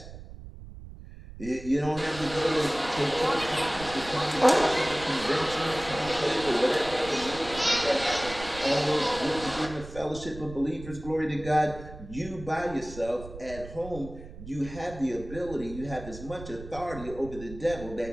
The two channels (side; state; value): right; noise; rumble, 14 dB below the sound